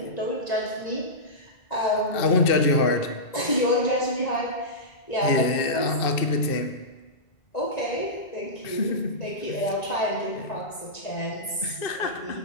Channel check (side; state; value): right; late; 1.9 ms